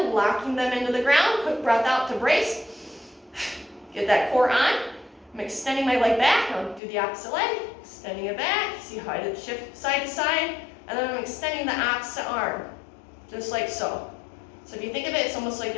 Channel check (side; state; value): right; drops out; at 6.8 s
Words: locking them into the ground. Quick breath out to brace. Get that core on. I'm extending my leg back. I'll do the opposite leg. Extending it back. See how I did shift side to side. And then I'm extending the opposite arm. Just like so. So if you think of it, it's almost like